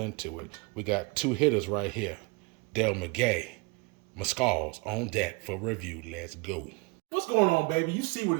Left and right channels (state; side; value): quieter; left; 28.5 dB